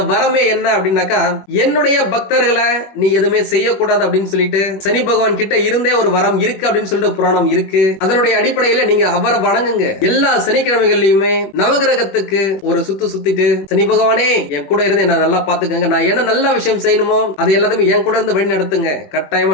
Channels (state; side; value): late; right; 21 ms